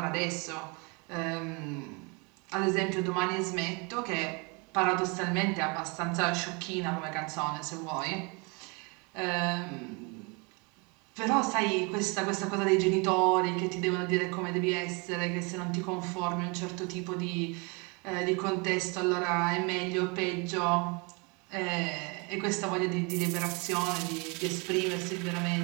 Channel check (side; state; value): left; quieter; 30.6 dB